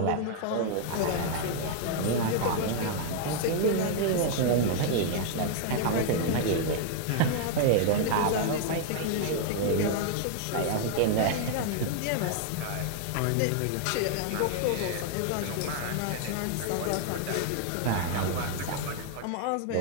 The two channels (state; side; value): different; both; correlation 0.00